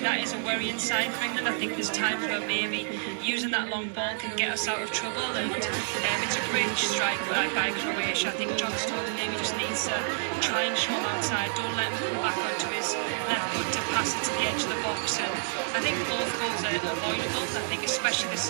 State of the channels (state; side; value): silent; left; digital silence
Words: that is a worrying sign for England. I think there's times where maybe using that long ball can get us out of trouble, and it's a great strike by Croatia. I think John Stones maybe just needs to try and show him outside. Don't let him come back onto his left foot to pass it to the edge of the box. And I think both goals are avoidable. I think especially the